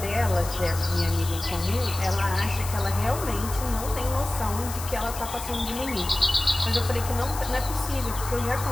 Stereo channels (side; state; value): left; noise; hiss, 10 dB below the sound